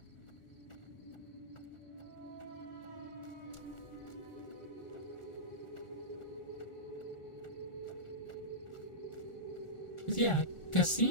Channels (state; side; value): late; right; 1.4 ms